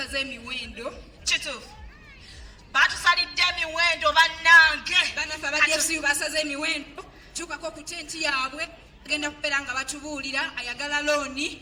emiwendo. Kituufu. Batusalidde emiwendo bannange. Banafe aba DFCU basaze emiwendo. Tukako ku tenti yaabwe agenda kubeera nga batubuulira ayagala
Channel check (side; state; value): both; identical; correlation 1.00